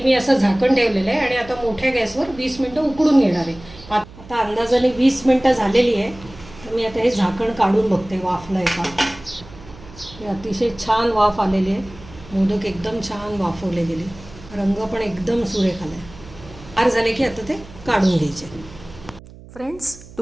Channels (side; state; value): right; noise; hum, 19 dB below the sound